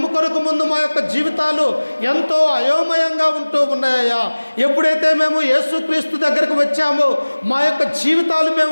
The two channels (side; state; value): both; inverted; correlation -1.00